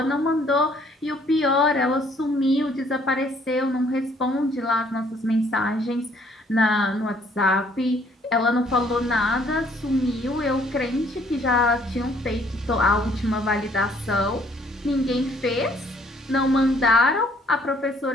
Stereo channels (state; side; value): normal; both; correlation 0.63